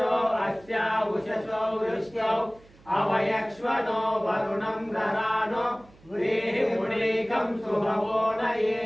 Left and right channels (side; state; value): right; noise; hum, 26 dB below the sound